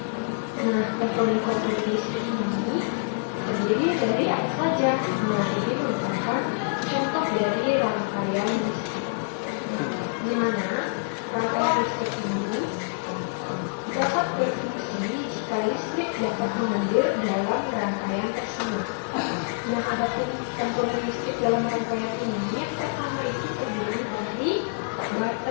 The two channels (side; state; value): right; silent; digital silence